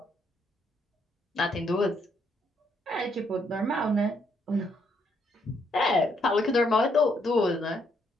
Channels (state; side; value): normal; both; correlation 0.73